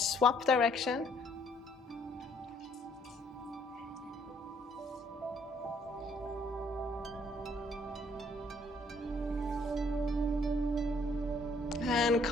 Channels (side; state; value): both; normal; correlation 0.65